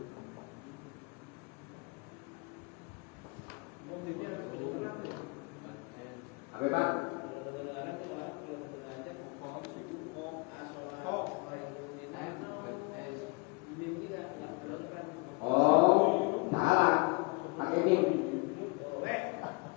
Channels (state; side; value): quieter; right; 29.9 dB